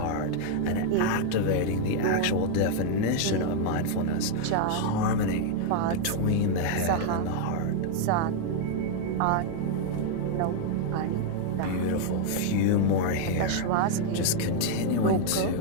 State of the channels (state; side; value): different; both; correlation 0.00